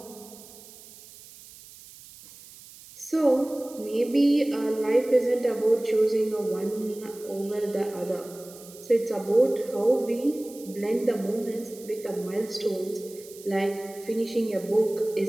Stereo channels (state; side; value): noise; right; hiss, 19 dB below the sound